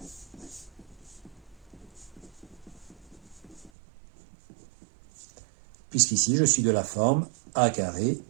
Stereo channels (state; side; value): drops out; left; at 3.7 s